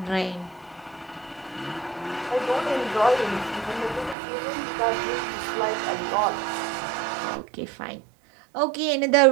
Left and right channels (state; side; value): drops out; left; at 4.2 s